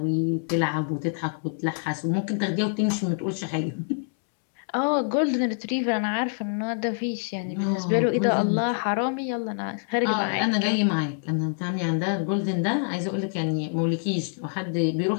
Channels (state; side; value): silent; right; digital silence